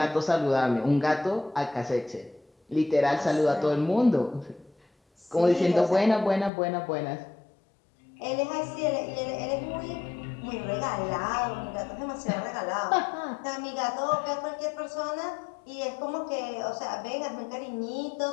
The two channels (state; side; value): drops out; right; at 6.5 s